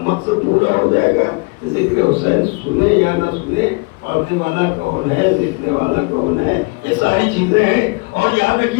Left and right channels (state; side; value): quieter; right; 28.9 dB